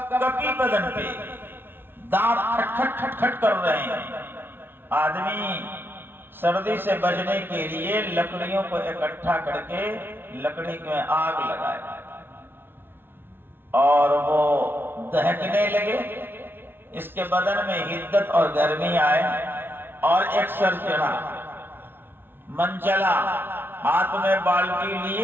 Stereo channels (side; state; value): left; late; 0.10 ms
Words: کپی بدن پہ، دانت کھٹ کھٹ کھٹ کر رہے ہیں۔ آدمی سردی سے بچنے کے لیے لکڑیوں کو اکٹھا کر کے لکڑی میں آگ لگائے اور وہ دہکنے لگے، اس کے بدن میں حدت اور گرمی آئے اور ایک سر چڑھا، من چلا، ہاتھ میں بالٹی